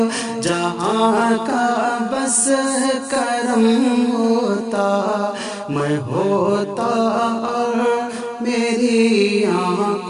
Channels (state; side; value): identical; both; correlation 1.00